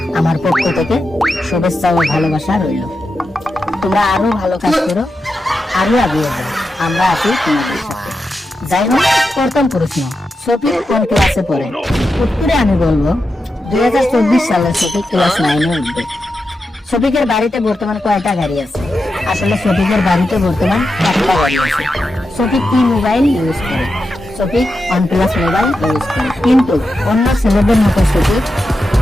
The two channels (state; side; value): normal; both; correlation 0.89